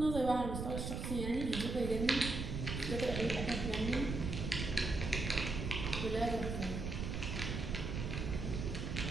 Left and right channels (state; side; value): noise; right; rumble, 3 dB below the sound